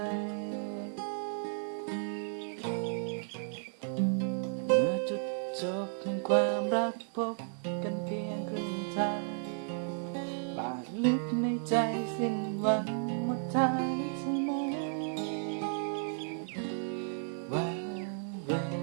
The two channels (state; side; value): silent; left; digital silence